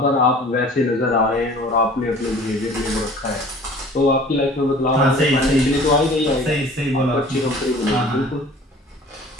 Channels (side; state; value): both; normal; correlation 0.47